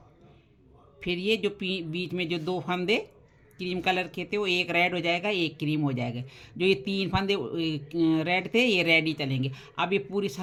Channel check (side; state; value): both; identical; correlation 1.00